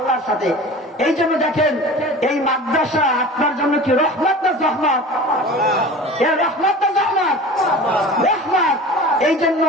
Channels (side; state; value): both; normal; correlation 0.38